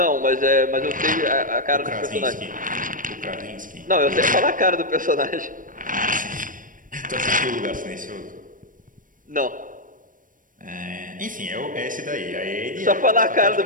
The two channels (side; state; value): left; late; 0.39 ms